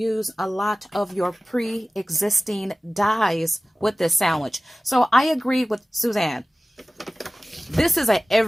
a lot of your pre-existing dies with this sandwich. So I agree with Suzanne. This is an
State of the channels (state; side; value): normal; both; correlation 0.97